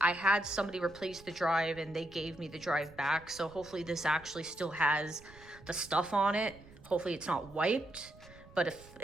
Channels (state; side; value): noise; right; rumble, 22 dB below the sound